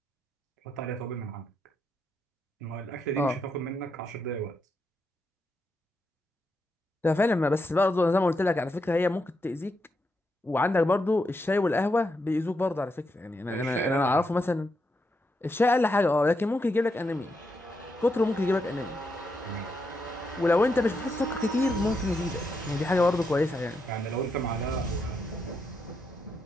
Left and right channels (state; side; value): normal; both; correlation 0.82